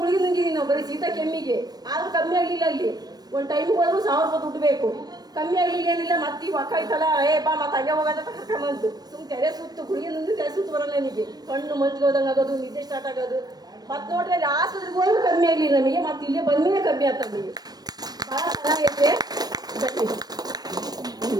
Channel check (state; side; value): late; left; 0.19 ms